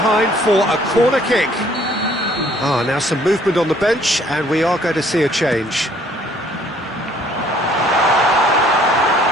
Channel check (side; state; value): both; normal; correlation 0.60